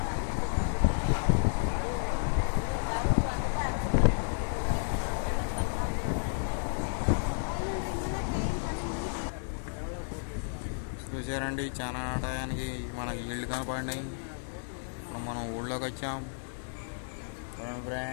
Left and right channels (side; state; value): right; silent; digital silence